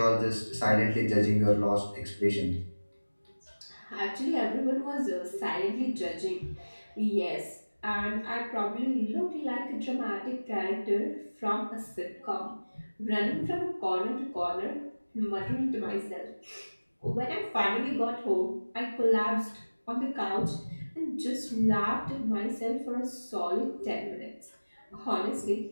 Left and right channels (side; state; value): both; inverted; correlation -1.00